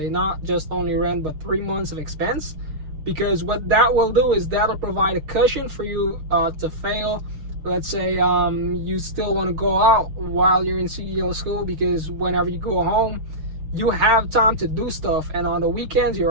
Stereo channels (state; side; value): late; left; 6.5 ms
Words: not just only rent, but 3 months of expense, because what that will do is that'll provide a cushion for you to fail. Let's say you still want to go out while you're in CDL school, because whenever you go home, you have time to do stuff, and on the weekends